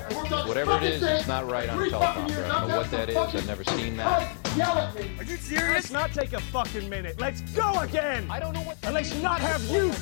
Whatever it is, it's not right on a teleprompter. I don't know what that is. I've never seen that. Yell at me. Are you serious? Let's not take a fucking minute. Let's go again. I don't know what. And let's not have you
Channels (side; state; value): right; silent; digital silence